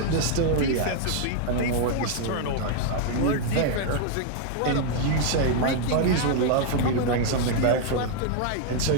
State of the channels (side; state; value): both; different; correlation 0.00